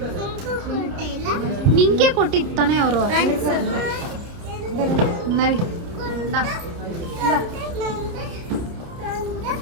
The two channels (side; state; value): left; late; 30 ms